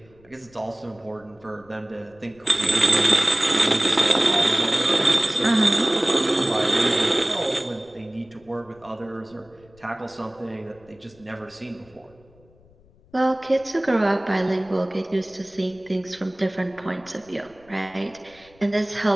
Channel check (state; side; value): noise; left; rumble, 28 dB below the sound